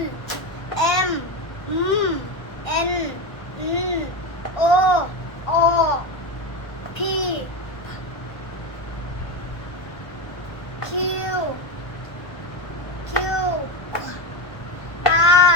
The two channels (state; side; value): late; right; 1.1 ms